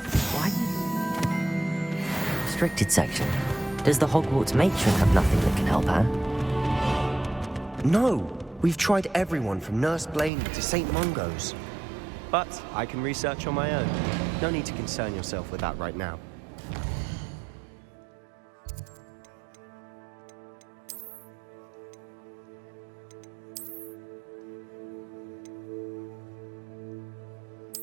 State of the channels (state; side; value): drops out; left; at 10.3 s